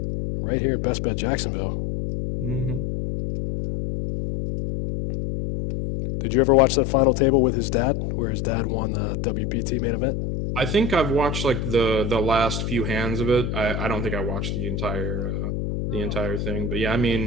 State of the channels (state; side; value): noise; left; hum, 2 dB below the sound